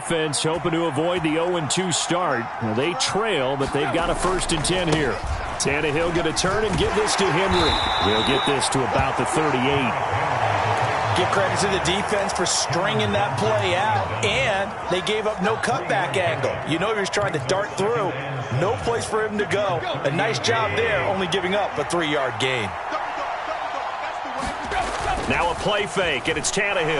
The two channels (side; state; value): both; identical; correlation 1.00